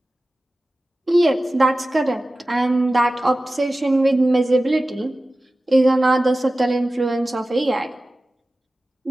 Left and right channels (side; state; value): both; normal; correlation 0.96